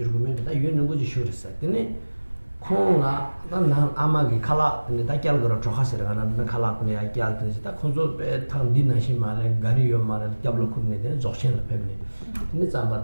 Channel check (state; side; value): inverted; both; correlation -1.00